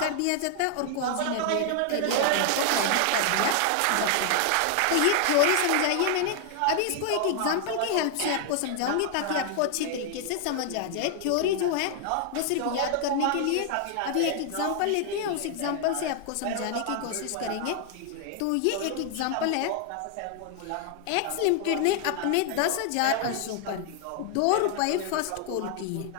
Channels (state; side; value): different; both; correlation 0.00